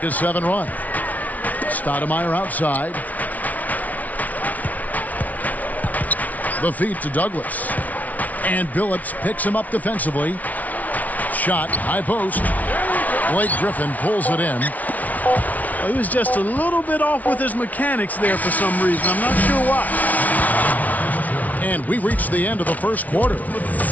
run. Stoudemire outside. The feed to Douglas. And Billups picks him up defensively. Shot, high post. Blake Griffin pulls it in. He was just a little bit off with his mechanics there for some reason. I'm not sure why. And we reach the end of the first quarter.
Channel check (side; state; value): right; late; 0.073 ms